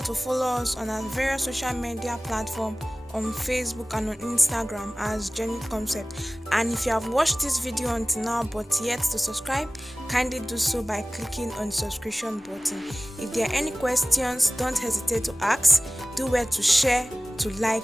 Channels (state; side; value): normal; both; correlation 0.98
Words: to follow us on our various social media platforms on Facebook and on Instagram as Genuine Concept. And if you have watched this video until now but yet to subscribe, kindly do so by clicking on the subscription button. If there are any questions, don't hesitate to ask. Do well to share, to like,